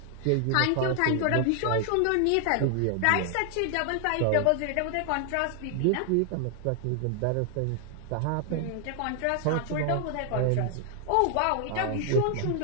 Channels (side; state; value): both; different; correlation 0.00